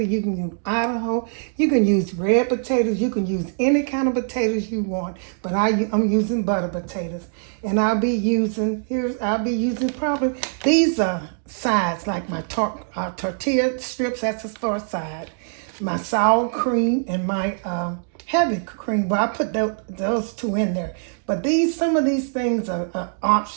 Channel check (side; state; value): left; silent; digital silence